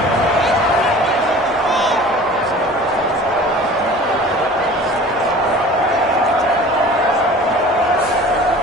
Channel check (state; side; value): normal; both; correlation 0.43